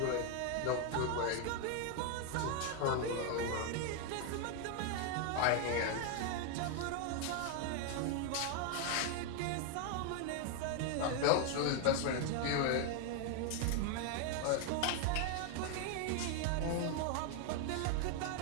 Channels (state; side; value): different; both; correlation 0.01